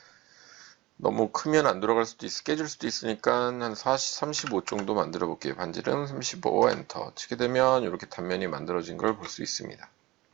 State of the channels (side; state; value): left; quieter; 19.7 dB